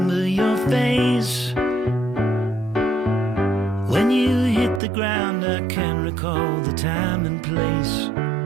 your face when you hit the ground. I can recall the time and place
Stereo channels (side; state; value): left; drops out; at 4.8 s